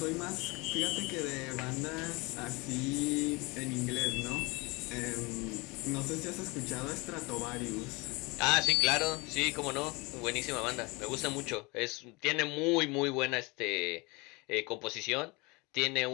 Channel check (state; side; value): quieter; right; 26.0 dB